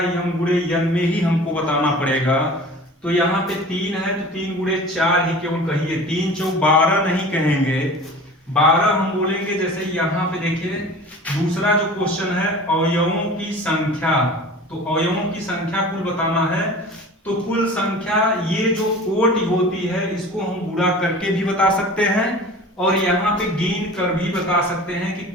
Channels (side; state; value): both; normal; correlation 0.40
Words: यम गुणे यन में ही हमको बताना पड़ेगा। तो यहाँ पे 3 है तो 3 गुणे 4 ही केवल कहिए, 3 चौक 12 नहीं कहेंगे, 12 हम बोलेंगे। जैसे यहाँ पे देखिए दूसरा जो क्वेश्चन है अवयवों की संख्या। तो अवयवों की संख्या कुल बताना है। तो कुल संख्या ये जो कोटि होती है इसको हम गुणा करके भी बता सकते हैं और यहाँ पे गिन कर भी बता सकते हैं कि